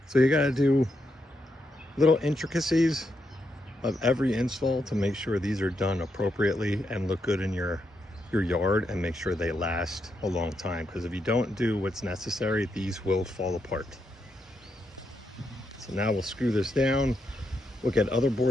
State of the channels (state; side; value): normal; both; correlation 0.82